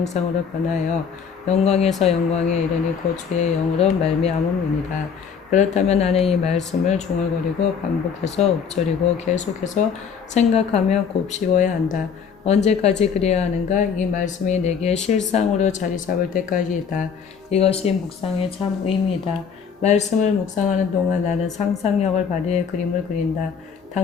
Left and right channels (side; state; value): right; quieter; 6.5 dB